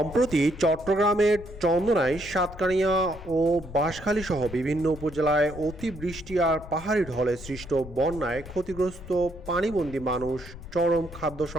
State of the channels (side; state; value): left; noise; rumble, 14 dB below the sound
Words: চট্টগ্রামের চন্দনাইশ, সাতকানিয়া ও বাঁশখালী সহ বিভিন্ন উপজেলায় অতিবৃষ্টি আর পাহাড়ি ঢলে সৃষ্ট বন্যায় ক্ষতিগ্রস্ত পানিবন্দী মানুষ চরম খাদ্য